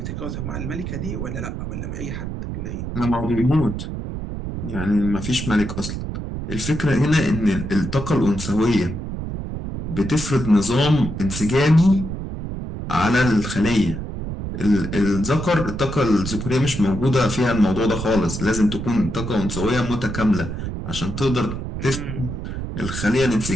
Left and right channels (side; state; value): right; noise; rumble, 6 dB below the sound